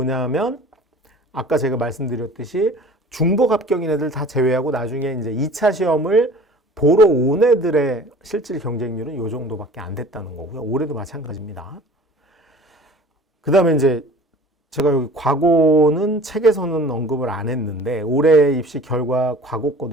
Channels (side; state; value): both; normal; correlation 0.44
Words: 아까 제가 말씀드렸듯이 중복 합격인 애들 다 제외하고 나중에 이제 2차 시험을 보러 온 애들의 실질 경쟁률은 요 정도밖에 안 됐다는 거고요. 올해도 마찬가지입니다. 그 다음에 이제 제가 여기 과고는 책에서는 언급을 안 했는데 올해 입시 결과 과고